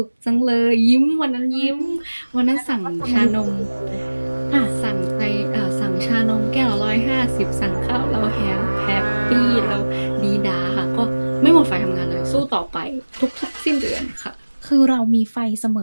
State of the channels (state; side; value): inverted; both; correlation -1.00